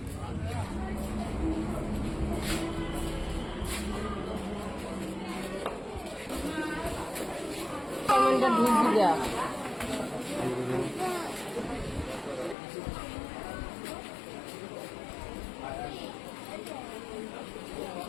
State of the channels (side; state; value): right; drops out; at 12.6 s